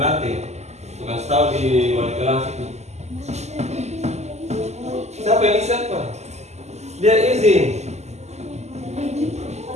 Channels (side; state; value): left; late; 0.33 ms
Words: Suka tahu di wali kelas itu. Siapa yang siapa? Dia izin.